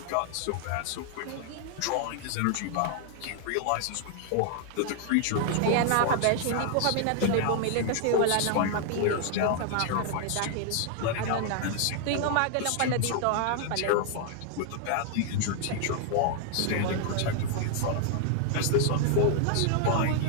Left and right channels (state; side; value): different; both; correlation 0.00